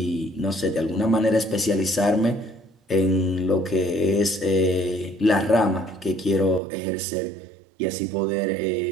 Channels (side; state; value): left; drops out; at 6.6 s